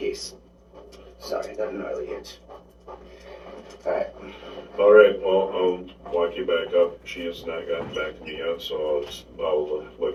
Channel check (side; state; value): both; identical; correlation 1.00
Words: Sorry, that gnarly itch. Alright. All right, well, I'll walk you back up. She has not gotten back to me yet, so I'll